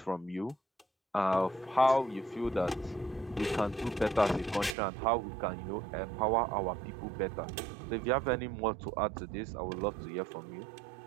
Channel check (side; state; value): left; drops out; at 4.8 s